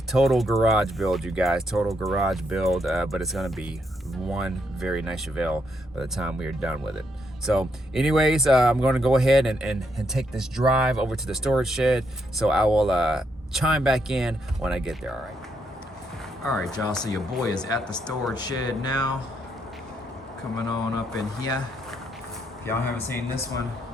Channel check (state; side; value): normal; both; correlation 0.77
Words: Total garage build, you guys, total garage build, but it's gonna be one very nice Chevelle by the time we are done with it. So anyways, I'm going to go ahead and take this drive over to the storage shed. So I will chime back in when I get there. All right, y'all, so your boy is at the storage shed now. Coming on up in here. If y'all haven't seen this one,